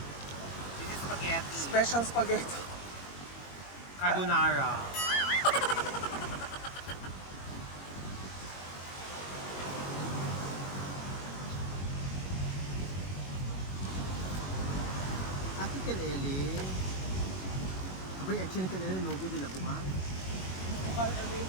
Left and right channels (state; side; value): late; right; 21 ms